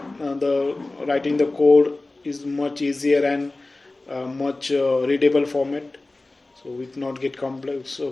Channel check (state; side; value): quieter; right; 3.0 dB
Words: writing the code is much easier and much readable format. So it not get complex.